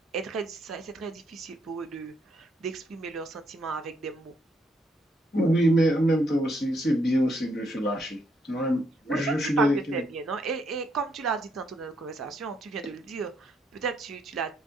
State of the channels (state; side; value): normal; both; correlation 0.75